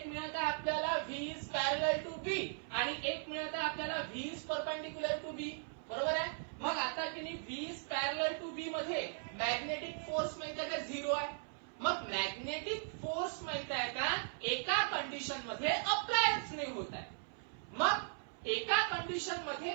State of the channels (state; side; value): silent; left; 52 dB below the other